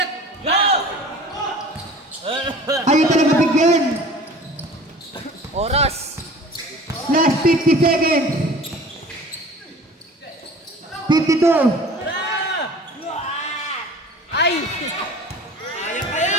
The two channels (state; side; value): normal; both; correlation 0.44